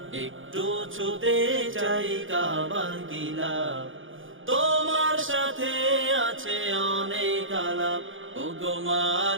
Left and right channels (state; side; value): late; left; 0.58 ms